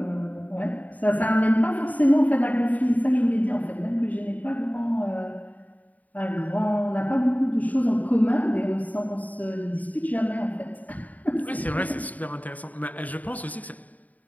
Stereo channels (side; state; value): right; late; 0.075 ms